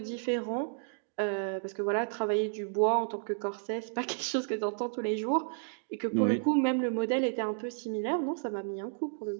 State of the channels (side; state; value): left; silent; digital silence